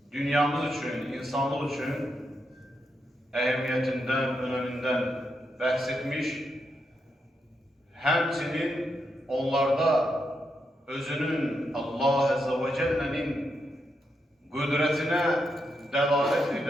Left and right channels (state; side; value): normal; both; correlation 0.83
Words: dünyamız için, insanlık için ehemmiyetinden, öneminden bahsetmiş, həmçinin onlarda özünün Allah Azze ve Celle'nin qüdrətinə dəlalət